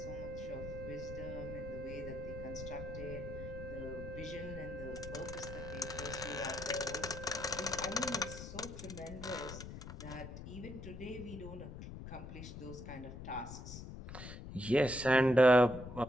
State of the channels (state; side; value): noise; left; rumble, 10 dB below the sound